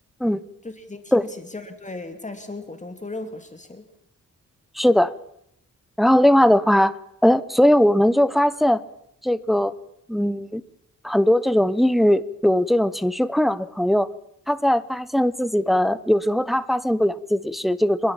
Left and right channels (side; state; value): both; normal; correlation 0.97